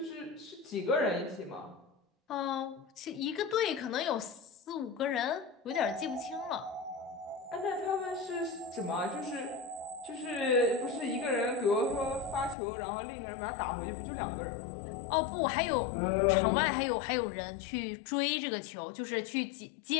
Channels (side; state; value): right; drops out; at 12.6 s